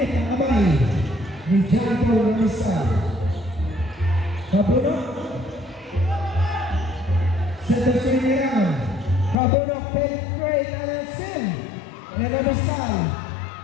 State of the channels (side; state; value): right; drops out; at 9.3 s